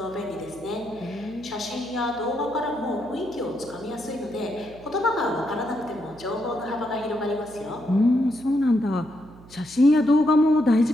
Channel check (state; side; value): noise; right; hum, 21 dB below the sound